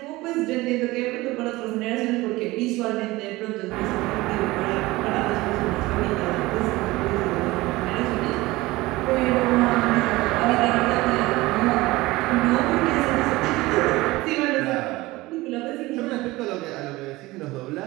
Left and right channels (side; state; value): left; quieter; 19.9 dB